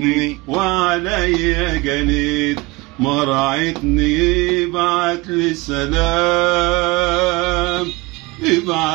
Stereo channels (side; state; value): left; quieter; 23.5 dB